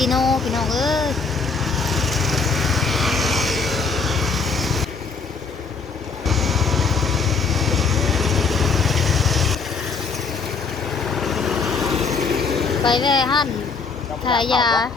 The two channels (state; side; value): quieter; right; 5.0 dB